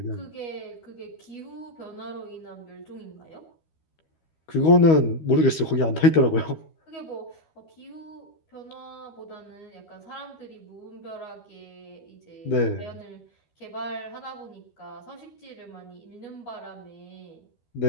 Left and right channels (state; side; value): late; right; 12 ms